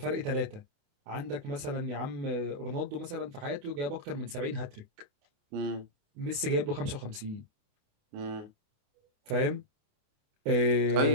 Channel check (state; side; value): late; left; 28 ms